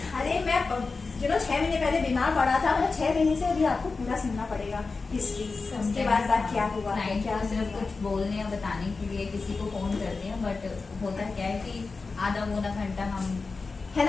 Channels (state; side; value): quieter; right; 4.2 dB